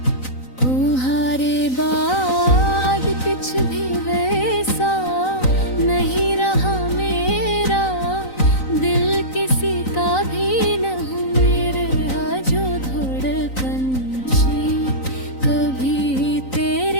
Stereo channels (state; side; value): late; right; 3.9 ms